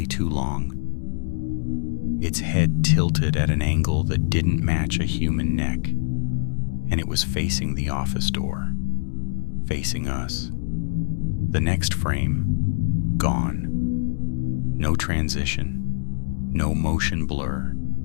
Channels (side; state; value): right; silent; digital silence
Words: too long. Its head tilted at an angle that didn't match a human neck, and it was facing the office door, facing us. The next frame, gone. No transition, no motion blur,